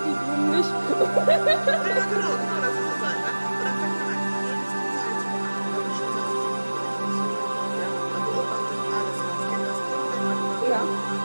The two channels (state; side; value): inverted; both; correlation -1.00